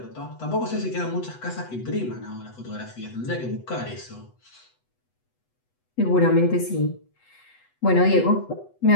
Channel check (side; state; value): right; late; 8.1 ms